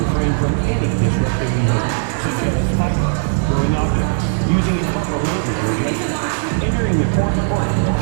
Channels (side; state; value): left; silent; digital silence